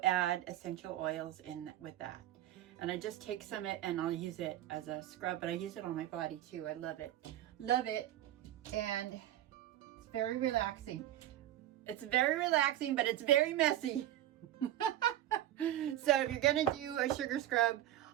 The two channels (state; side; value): quieter; left; 13.1 dB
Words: add essential oils in with that. And I just take some of it and I'll use it as a scrub, but I use it on my body too. I love it. Love it. And it's very relaxing. It's very relaxing, but it's very messy. So if you're gonna do a sugar scrub,